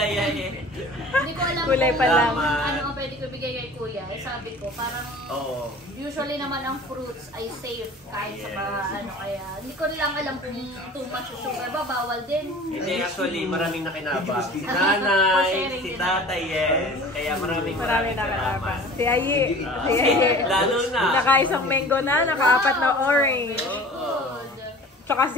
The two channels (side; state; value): both; normal; correlation 0.43